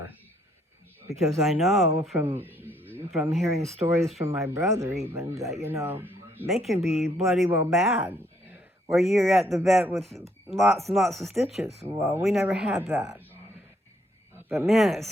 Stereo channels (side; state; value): both; normal; correlation 0.69